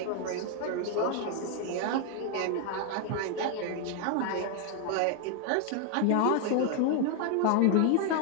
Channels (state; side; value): different; both; correlation 0.00